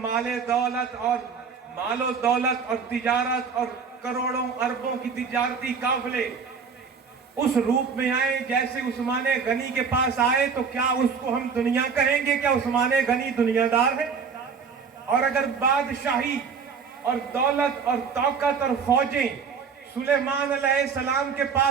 و دولت اور تجارت اور کروڑوں اربوں کی تجارتی قافلے اس روپ میں آئے جیسے عثمان غنی کے پاس آئے تو کیا اس کو ہم دنیا کہیں گے؟ کیا عثمان غنی دنیا دار ہے؟ اور اگر بادشاہی اور دولت اور طاقت اور فوجیں سلیمان علیہ السلام کے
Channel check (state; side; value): quieter; left; 5.8 dB